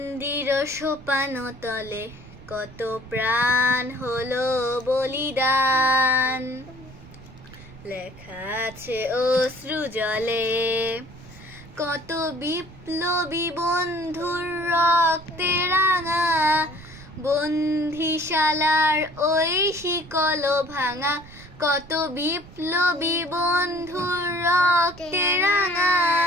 সোপান তলে কত প্রাণ হলো বলিদান, লেখা আছে অশ্রু জলে কত বিপ্লবী বন্ধুর রক্তে রাঙা, বন্দিশালার ওই শিকল ভাঙা, কত বিপ্লবী বন্ধুর রক্তে রাঙা,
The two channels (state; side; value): noise; right; rumble, 20 dB below the sound